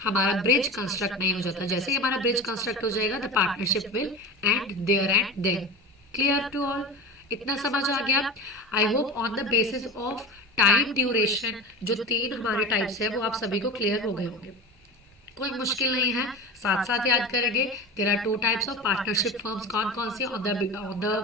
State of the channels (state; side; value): normal; both; correlation 0.30